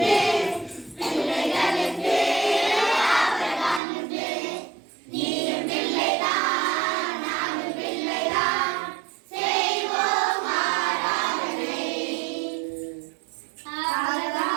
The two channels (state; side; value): drops out; left; at 3.8 s